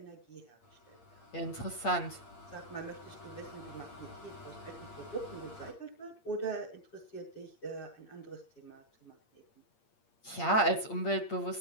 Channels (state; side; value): late; right; 8.6 ms